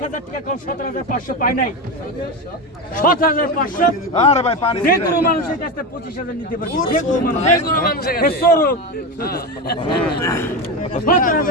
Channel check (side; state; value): both; normal; correlation 0.18